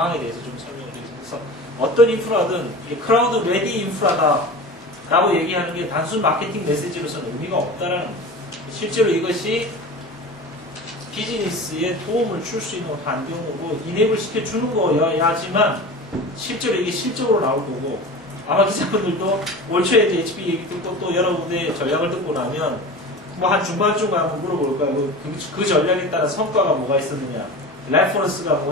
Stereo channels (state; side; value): normal; both; correlation 0.33